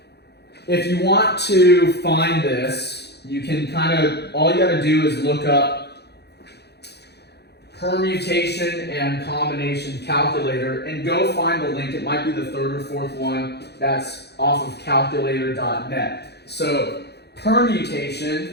if you want to find this, you can kind of, all you got to do is look up permutation and combination calculator and go find the link. It might be the 3rd or 4th one that's off of calculator.net. So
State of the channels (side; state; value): right; late; 0.48 ms